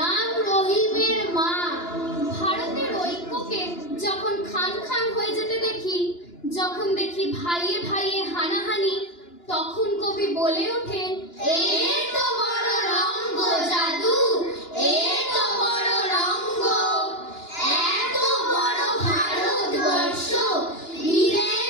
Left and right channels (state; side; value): late; right; 2.9 ms